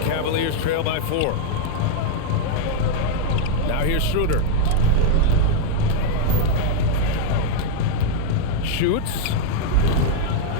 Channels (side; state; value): both; different; correlation 0.00